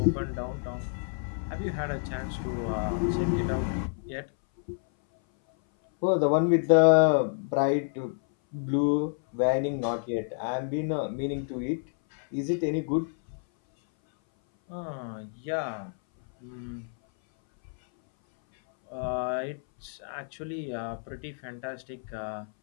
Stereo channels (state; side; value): silent; right; 57 dB below the other